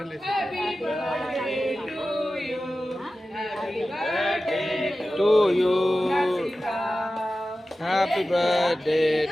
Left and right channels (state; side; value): normal; both; correlation 0.94